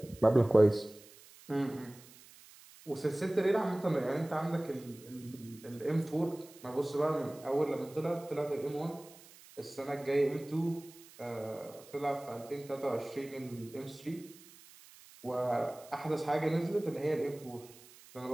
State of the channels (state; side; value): noise; right; hiss, 22 dB below the sound